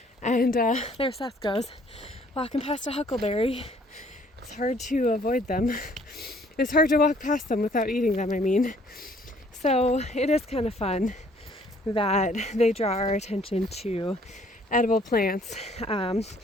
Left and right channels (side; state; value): both; normal; correlation 0.60